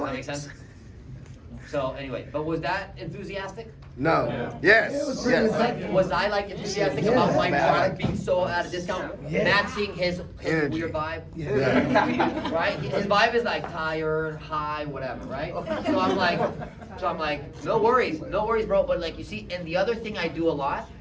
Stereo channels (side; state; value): both; identical; correlation 1.00